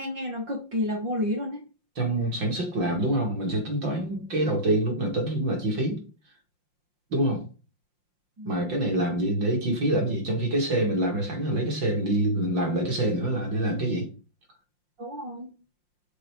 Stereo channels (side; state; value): left; late; 5.7 ms